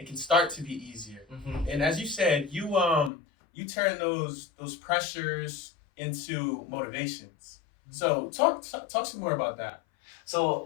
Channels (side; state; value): right; drops out; at 3.1 s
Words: start to be easier. And as you said, you turn those pressures into motivations. So talk some more about that. So